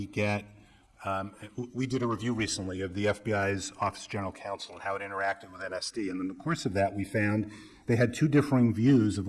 get, we did a review recently of the FBI's Office of General Counsel and how it interacted with NSD, and in the course of that, we found they had two differing views of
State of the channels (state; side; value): identical; both; correlation 1.00